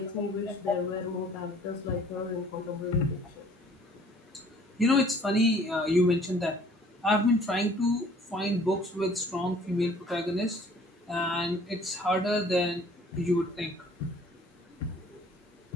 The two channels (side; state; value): both; normal; correlation 0.55